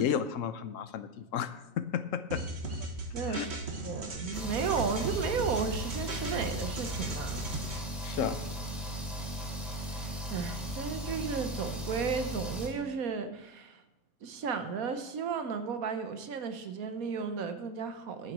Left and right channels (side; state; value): both; normal; correlation 0.14